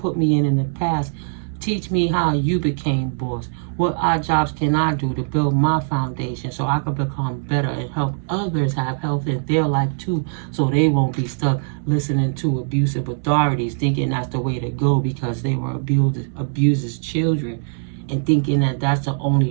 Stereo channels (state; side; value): silent; left; digital silence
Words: me in the past. Teach me how you became boss. What odd jobs can I do to build my foundation so I can become better and help others have health in their life too, so they won't be stuck listening to abusive authorities, thinking that's the way to go because they were abused as children, and thinking that that's the